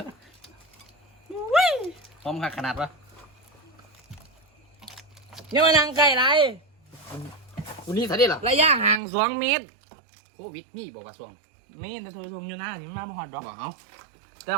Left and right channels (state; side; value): drops out; left; at 9.0 s